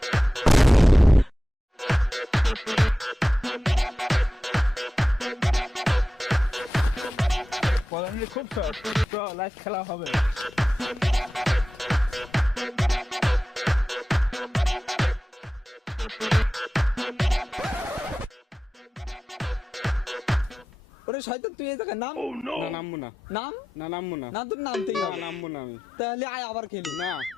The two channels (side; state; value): both; normal; correlation 0.94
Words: খুব লাইভ খেলা হবে। ওরে শয়তান তুই এই জায়গায় নাম। না নামবো না, নাম না নামবো না, না, তোর নামতেই না হবে। নামবো না আমি। তাহলে আয় আবার খেলি। না